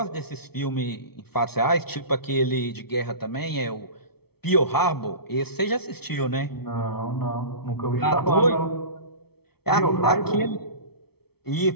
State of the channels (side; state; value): right; late; 0.96 ms